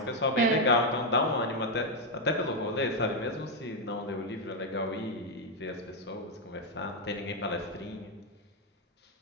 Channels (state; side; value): normal; both; correlation 0.02